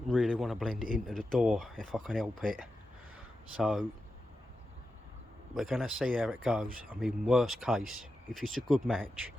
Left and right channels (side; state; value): both; normal; correlation 0.90